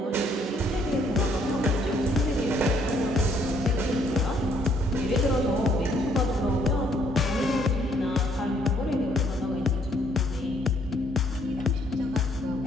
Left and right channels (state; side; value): normal; both; correlation 0.67